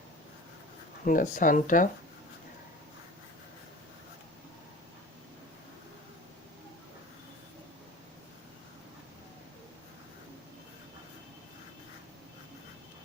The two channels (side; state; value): both; normal; correlation 0.39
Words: In the center.